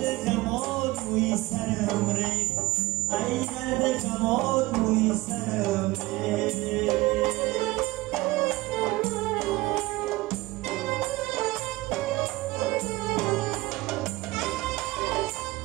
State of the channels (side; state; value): left; quieter; 20.2 dB